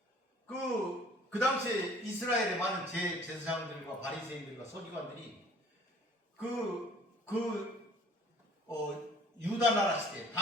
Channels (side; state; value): both; normal; correlation 0.52